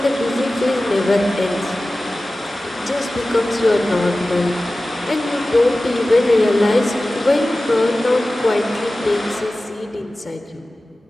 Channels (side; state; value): both; normal; correlation 0.96